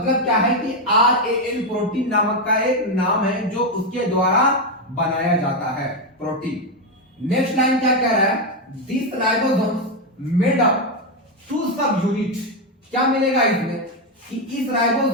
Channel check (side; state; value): both; normal; correlation 0.06